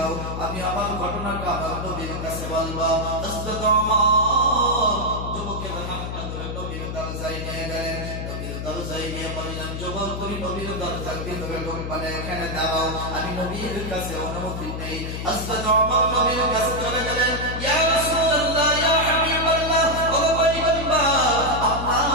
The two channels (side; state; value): left; noise; hum, 5 dB below the sound